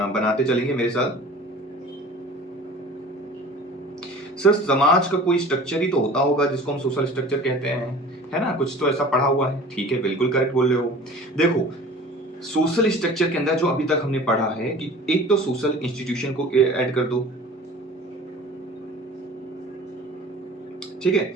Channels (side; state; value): both; normal; correlation 0.43